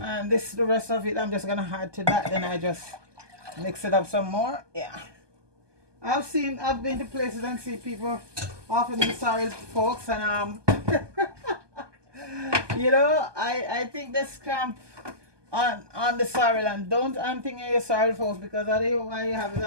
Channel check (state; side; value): late; left; 1.2 ms